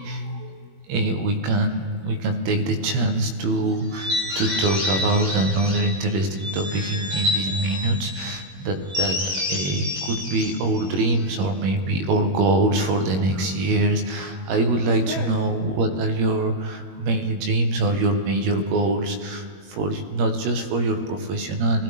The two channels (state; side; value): late; left; 21 ms